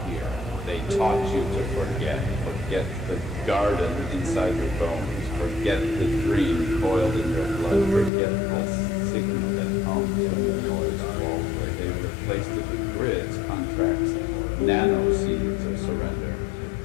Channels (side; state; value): right; drops out; at 8.1 s